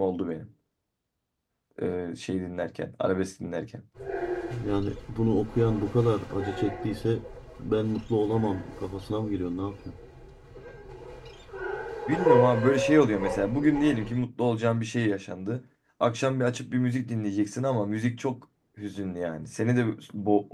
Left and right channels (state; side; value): identical; both; correlation 1.00